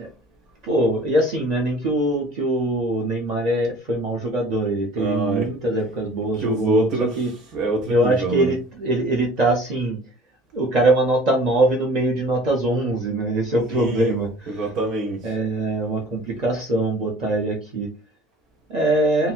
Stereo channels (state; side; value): normal; both; correlation 0.48